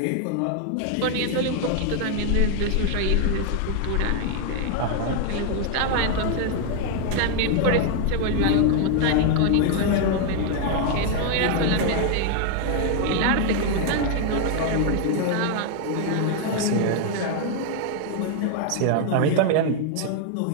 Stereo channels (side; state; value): both; different; correlation 0.00